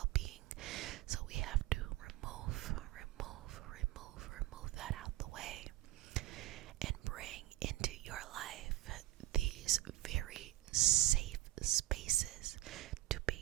So we have to remove that out the way and bring into your life these very safe spaces to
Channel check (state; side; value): quieter; left; 16.5 dB